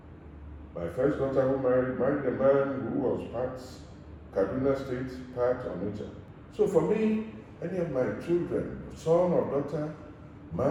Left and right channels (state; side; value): identical; both; correlation 1.00